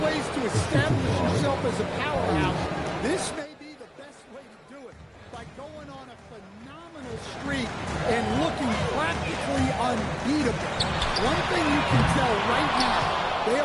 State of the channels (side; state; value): both; identical; correlation 1.00